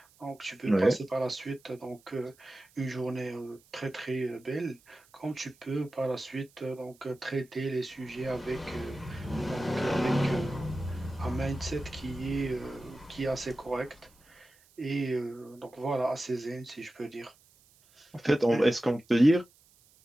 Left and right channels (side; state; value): right; noise; hiss, 29 dB below the sound